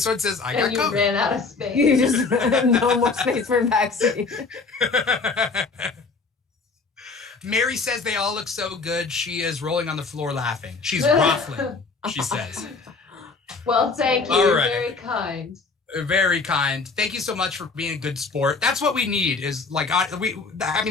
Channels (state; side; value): quieter; right; 4.3 dB